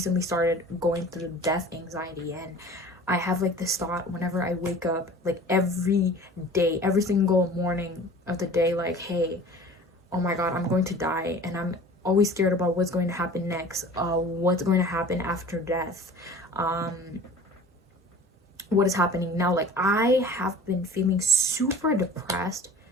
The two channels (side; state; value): both; normal; correlation 0.43